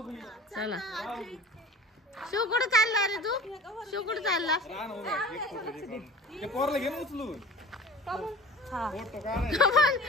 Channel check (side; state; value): both; normal; correlation 0.41